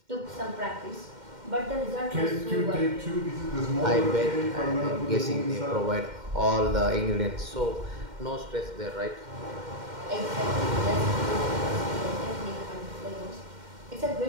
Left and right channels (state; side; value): late; left; 2.1 ms